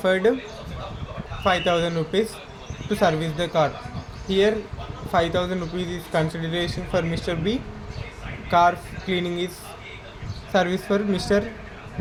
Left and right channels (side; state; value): both; identical; correlation 1.00